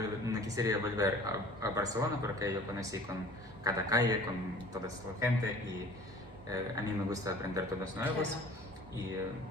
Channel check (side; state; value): both; normal; correlation 0.47